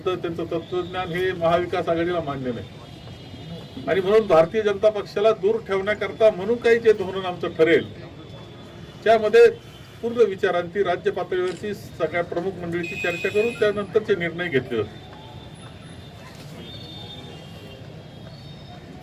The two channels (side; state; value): both; identical; correlation 1.00